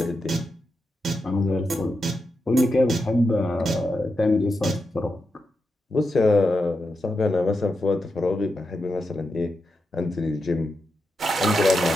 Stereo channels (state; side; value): normal; both; correlation 0.87